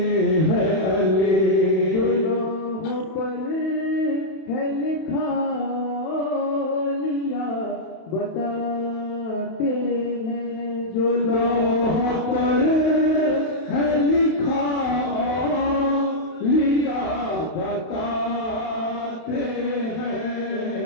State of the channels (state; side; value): late; right; 31 ms